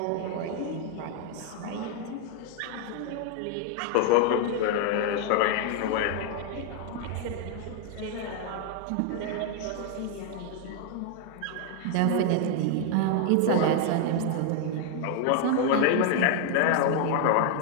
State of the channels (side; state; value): both; different; correlation 0.00